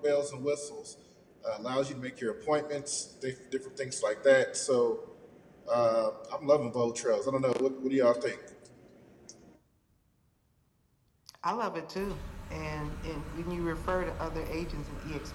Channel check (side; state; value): both; identical; correlation 1.00